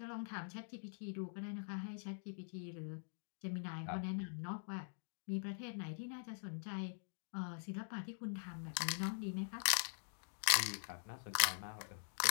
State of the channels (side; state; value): right; silent; digital silence